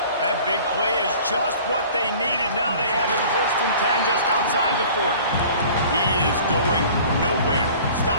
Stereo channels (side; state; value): both; inverted; correlation -0.46